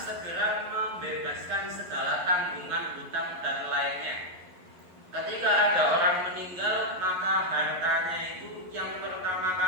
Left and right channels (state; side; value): late; left; 11 ms